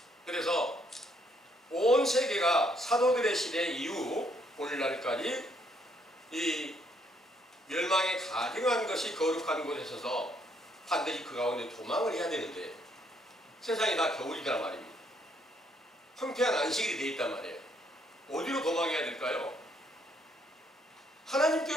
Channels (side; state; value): both; normal; correlation 0.70